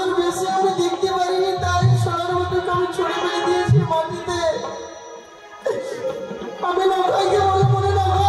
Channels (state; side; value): identical; both; correlation 1.00